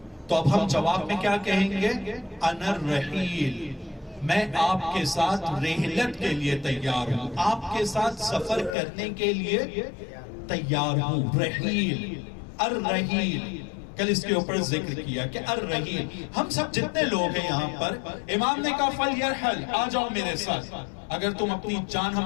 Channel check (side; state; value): right; drops out; at 8.8 s